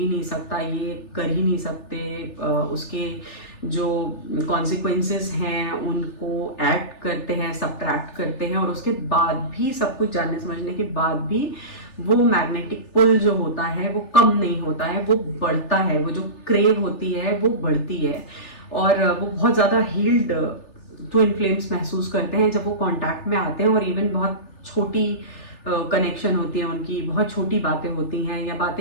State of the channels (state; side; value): late; right; 3.4 ms